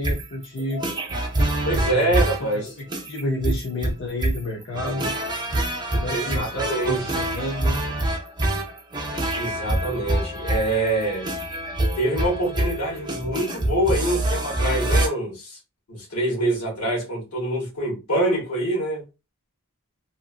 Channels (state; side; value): normal; both; correlation 0.43